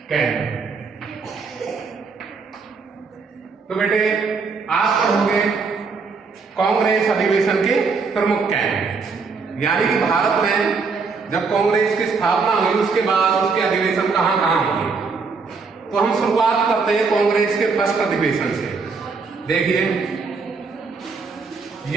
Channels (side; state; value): left; quieter; 4.7 dB